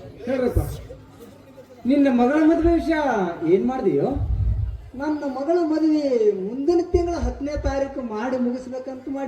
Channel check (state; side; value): identical; both; correlation 1.00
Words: ಹೇಳ್ರಪ್ಪ, ನಿನ್ನ ಮಗಳ ಮದುವೆ ವಿಷಯ ಏನ್ ಮಾಡ್ದೀಯೋ? ನನ್ನ ಮಗಳ ಮದುವೆ ಮುಂದಿನ ತಿಂಗಳ 10ನೇ ತಾರೀಕು ಮಾಡಿ ಮುಗಿಸ್ಬೇಕಂತ